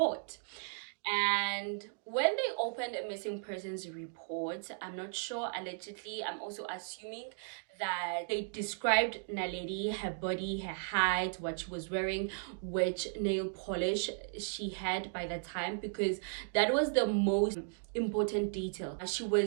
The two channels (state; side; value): silent; left; digital silence